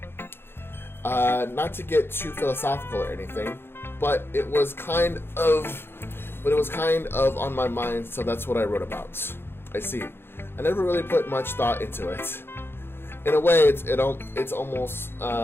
Not to get too philosophical or anything, but it was kind of on my mind, so that's what I wrote about. I see. I never really put much thought into it. In a way, it's almost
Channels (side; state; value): right; late; 0.11 ms